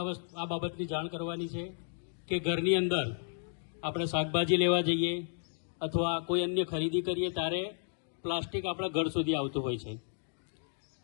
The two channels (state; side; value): silent; right; digital silence